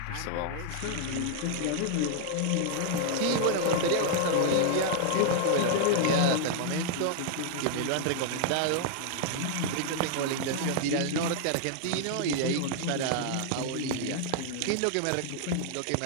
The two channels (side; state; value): both; different; correlation 0.00